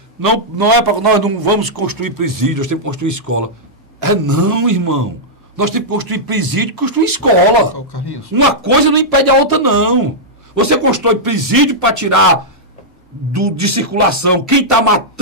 não é para nós não vamos construir presídios, temos que construir escola. Não, irmão. Nós temos que construir presídio, construir escola. Carlinhos. Uma coisa não impede a outra, não. Você constrói presídio para tirar de circulação quem está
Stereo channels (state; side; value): normal; both; correlation -0.09